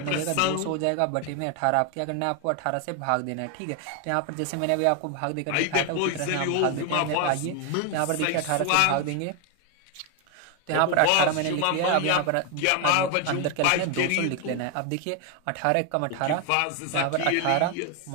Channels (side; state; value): both; different; correlation 0.01